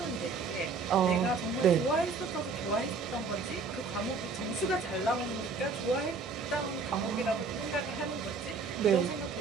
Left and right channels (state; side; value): quieter; left; 4.5 dB